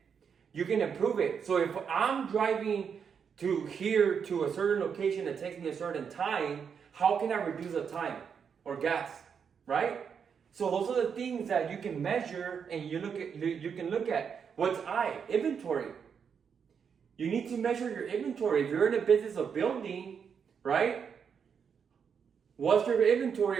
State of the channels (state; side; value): quieter; left; 6.8 dB